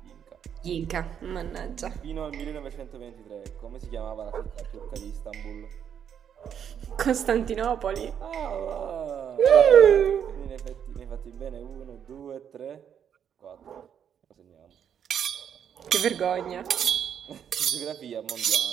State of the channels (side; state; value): left; quieter; 8.5 dB